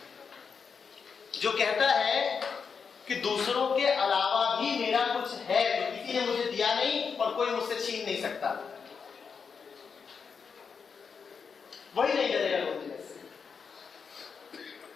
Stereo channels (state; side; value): quieter; right; 5.9 dB